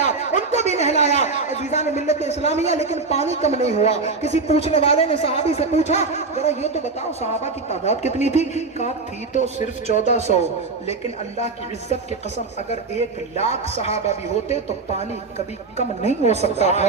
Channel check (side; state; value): left; quieter; 4.1 dB